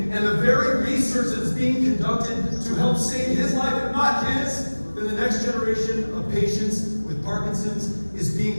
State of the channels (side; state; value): both; inverted; correlation -1.00